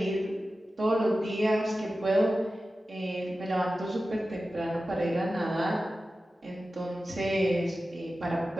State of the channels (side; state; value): both; normal; correlation 0.94